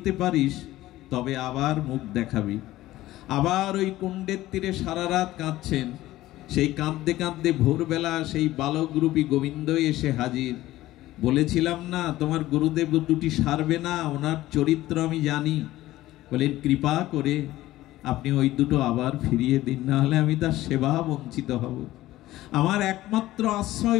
পারিস তবে আবার মুখ দেখাবি। আবার ওই কুণ্ডের তীরে সারা রাত কাঁদছেন। সেই কাঁদতে কাঁদতে ভোরবেলা সেই বালকরূপী গোবিন্দ এসে হাজির। বলেছিলাম না তোমার গুরুদেব দুটি সারবে না, ওনার চরিত্র আমি জানি। বলেন, কৃপা করে আপনি ওই দুটো আবার ফিরিয়ে দিন, না হলে আমি তার সেবা বঞ্চিত হব। আমার একমাত্র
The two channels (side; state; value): right; quieter; 16.0 dB